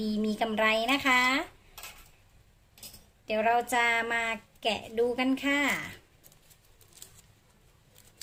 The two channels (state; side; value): identical; both; correlation 1.00